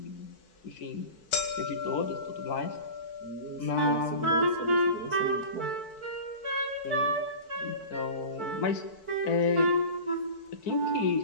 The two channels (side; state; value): right; late; 4.6 ms